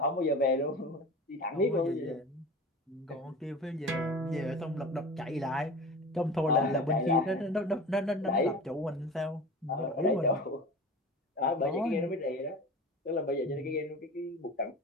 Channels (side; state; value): both; normal; correlation 0.35